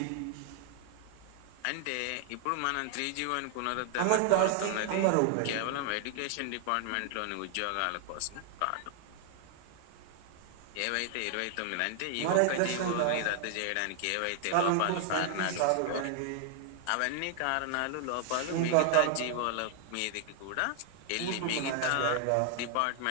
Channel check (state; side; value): different; both; correlation 0.00